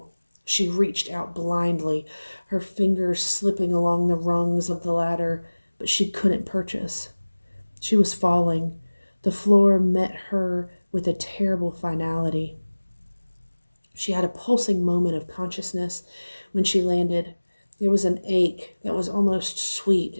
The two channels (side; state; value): both; inverted; correlation -1.00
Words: She reached out blindly, her fingers slipping along the rungs of the ladder, but she couldn't purchase. She was falling. The floor met her with a terrible finality. She had a pulsing moment of consciousness when she landed. There was an ache that was almost